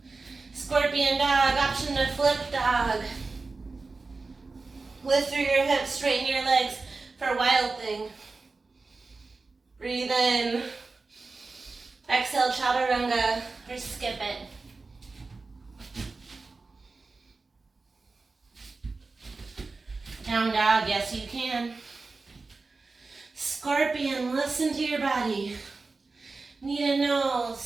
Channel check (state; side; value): quieter; left; 3.9 dB